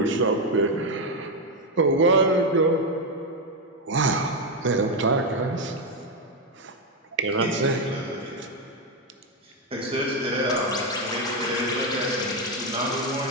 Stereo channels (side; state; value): both; normal; correlation 0.06